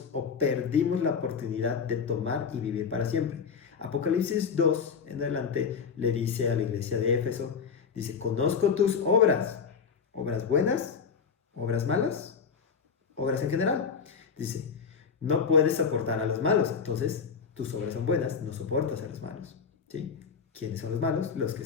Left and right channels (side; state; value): right; quieter; 6.0 dB